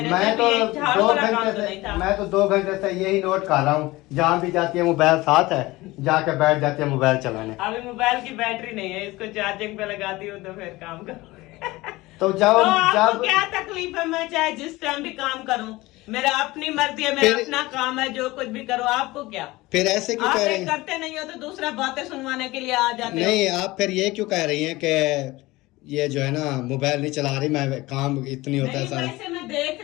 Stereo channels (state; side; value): quieter; right; 20.1 dB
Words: मैं तो झाड़ू 2 वाला काम घंटे तो नहीं था। मैं तो 2 घंटे से यही नोट कर रहा हूँ, जहाँ भी जाती है मोबाइल साथ है, जाके बैठ जाती है मोबाइल चलाने। अभी मोबाइल की बैटरी नहीं है, इसको चार्जिंग पे लगाती हूँ तो फिर काम करो। तो जब आपको क्या तकलीफ है? मैं चाहे जिस टाइम भी काम करूं, मेरा अपनी मर्जी है, मेरा अपना काम है, जो कुछ भी करो। आपको क्या? फिर ऐसे क्यों आप कह रही हैं? करते नहीं हो तो दूसरा बातें सुनवाने के लिए आ जाते हो। नहीं, आप फिर ये क्यों कह रही हैं कि ये जो है ना मोबाइल नहीं चला रही, मैं काम इतनी होता है नहीं, सारा। वैसे मैं देख